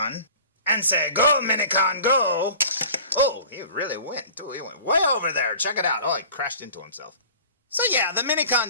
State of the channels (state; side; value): inverted; both; correlation -0.43